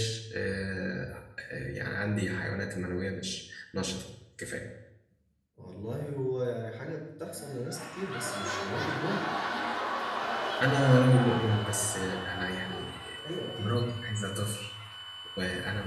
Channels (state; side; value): identical; both; correlation 1.00